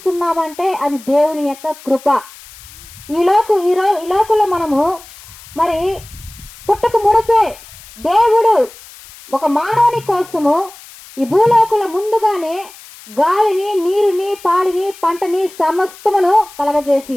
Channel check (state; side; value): noise; left; hiss, 20 dB below the sound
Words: అది దేవుని యొక్క కృప. ఈ లోకంలో మనము మరి పుట్టక మునిపే దేవుడు ఒక మానవుని కోసము ఈ భూలోకంలో ముందుగానే గాలిని, నీరుని, పాడిని, పంటని సమస్తమును కలగజేసి